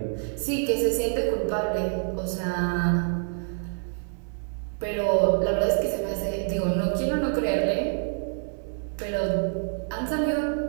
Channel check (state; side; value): silent; left; digital silence